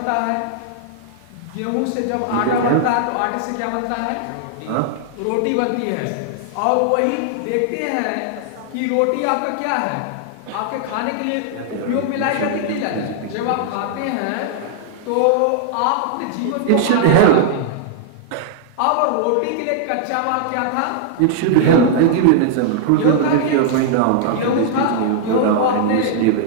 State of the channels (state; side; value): different; both; correlation -0.01